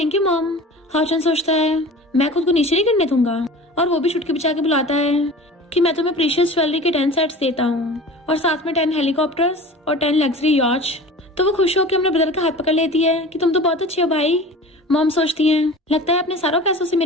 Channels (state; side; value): normal; both; correlation 0.38